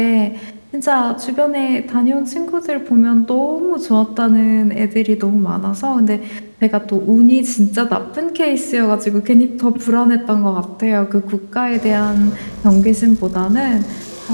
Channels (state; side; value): inverted; both; correlation -1.00